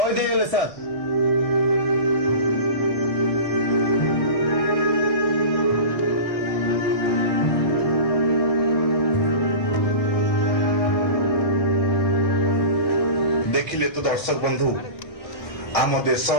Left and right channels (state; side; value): late; right; 1.6 ms